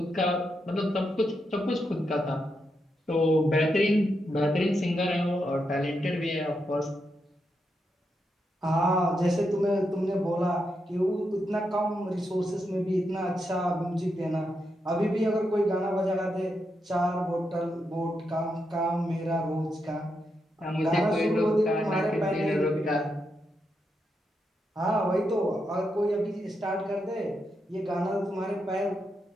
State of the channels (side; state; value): both; normal; correlation 0.83